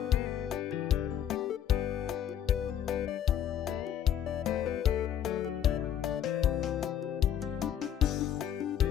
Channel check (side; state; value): right; quieter; 10.0 dB